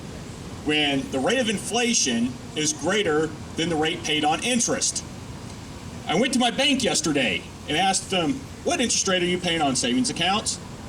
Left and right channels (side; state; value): both; identical; correlation 1.00